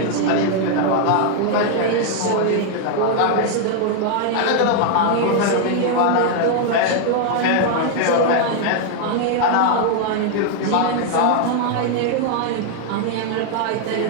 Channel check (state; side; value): different; both; correlation 0.00